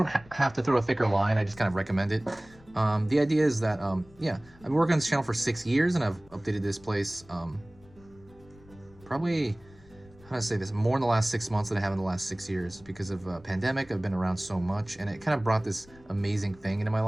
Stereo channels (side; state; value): left; noise; rumble, 25 dB below the sound